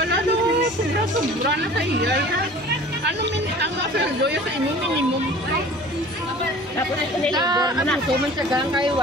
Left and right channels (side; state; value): both; normal; correlation 0.45